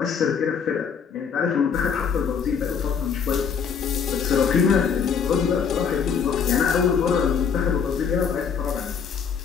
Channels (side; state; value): right; quieter; 6.7 dB